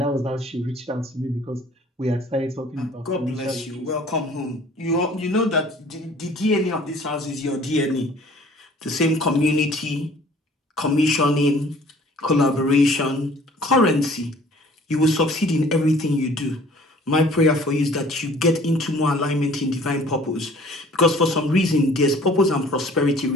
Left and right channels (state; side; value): normal; both; correlation 0.52